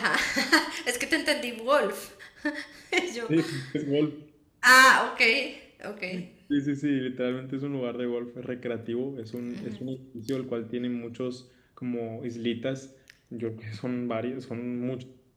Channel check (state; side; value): identical; both; correlation 1.00